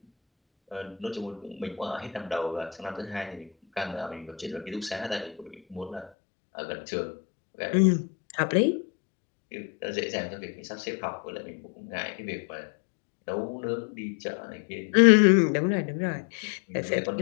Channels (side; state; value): right; drops out; at 6.1 s